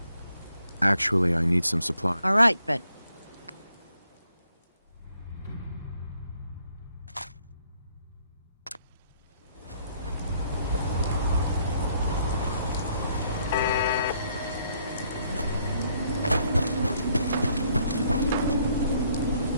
Actually, I need some supply. All right, but...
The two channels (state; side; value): inverted; both; correlation -0.69